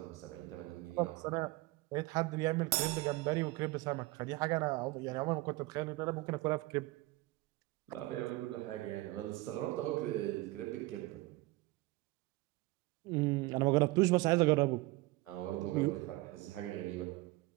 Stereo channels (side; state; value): left; quieter; 20.7 dB